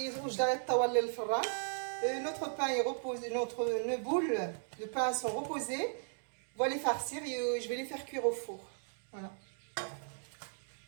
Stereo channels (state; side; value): silent; left; digital silence